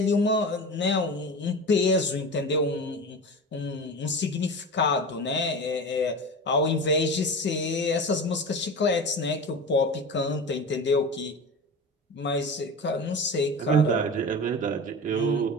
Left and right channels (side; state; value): both; normal; correlation 0.30